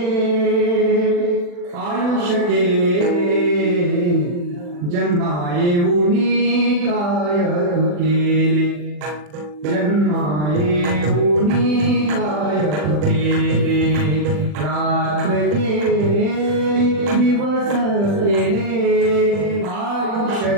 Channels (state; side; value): late; left; 40 ms